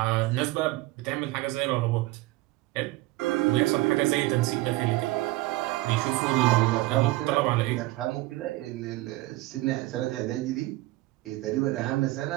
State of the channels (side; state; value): left; quieter; 19.3 dB